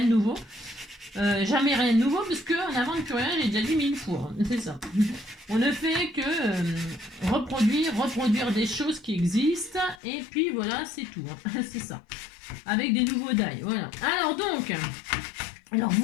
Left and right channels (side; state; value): right; drops out; at 10.0 s